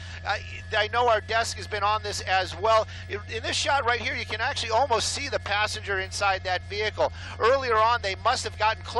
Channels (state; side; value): identical; both; correlation 1.00